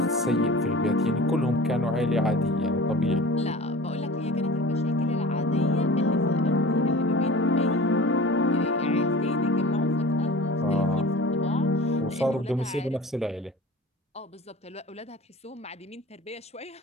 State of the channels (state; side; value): normal; both; correlation 0.39